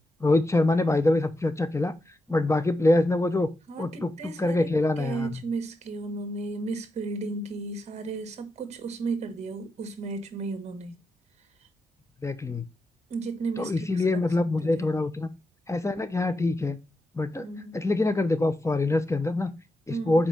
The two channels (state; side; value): normal; both; correlation 0.87